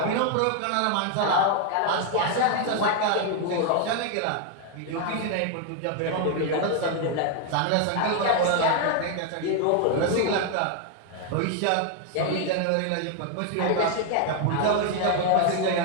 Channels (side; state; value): both; different; correlation 0.00